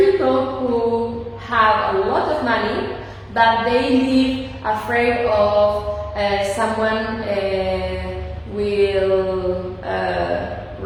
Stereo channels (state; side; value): identical; both; correlation 1.00